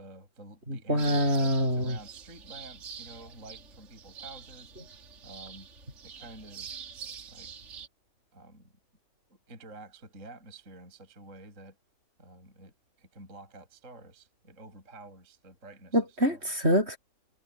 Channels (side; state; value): left; late; 3.1 ms